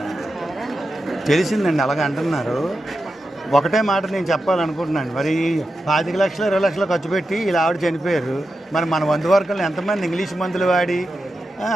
తెలిసిందండి, అలాగ అంటున్నారు. ఒకటే మాట నేను చెప్పాలనుకుంటున్నాను, మరి 25 లక్షలు 20 లక్షలు ఖర్చు పెట్టి ఇలా ఆవిడ చనిపోయారు. మరి మన వంతు వర్గంలో ఎంతమంది ఇంగ్లీష్ మందులు వాడి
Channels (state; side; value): normal; both; correlation 0.89